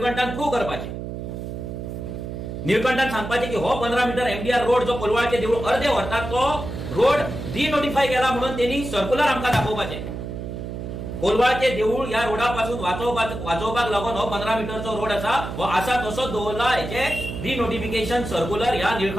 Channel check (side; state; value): right; noise; hum, 7 dB below the sound